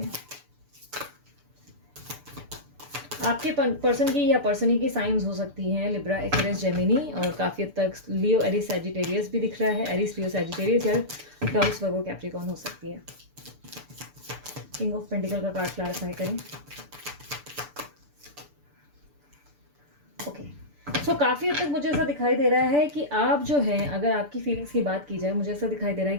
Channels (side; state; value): left; late; 6.9 ms